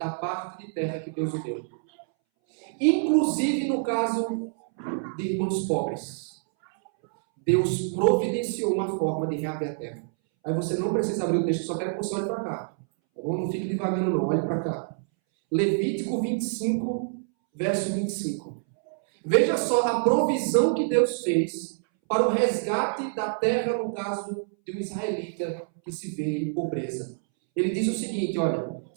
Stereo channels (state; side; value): silent; left; 60 dB below the other